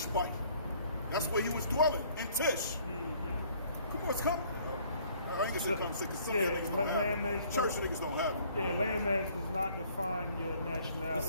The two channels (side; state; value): both; inverted; correlation -0.59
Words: That's where he was dwelling, in Tish. Come on, come. I ain't gonna say come sick, because some niggas don't have it. Church niggas don't have it. Yeah, landmass does not define your